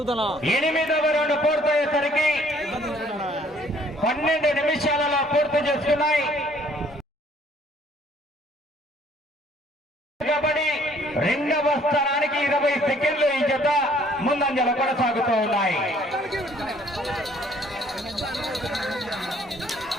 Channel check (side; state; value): both; normal; correlation 0.60